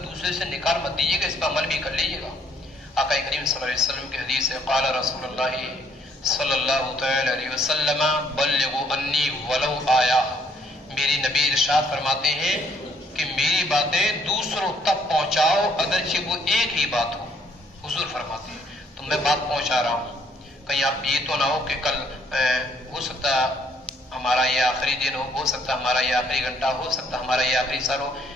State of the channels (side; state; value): both; normal; correlation 0.66